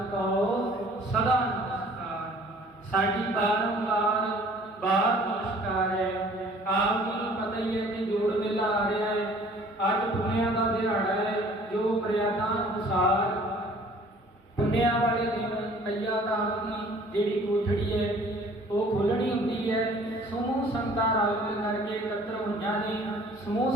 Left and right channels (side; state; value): both; normal; correlation 0.53